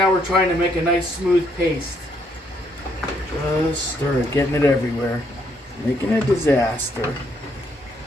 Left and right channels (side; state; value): both; normal; correlation 0.71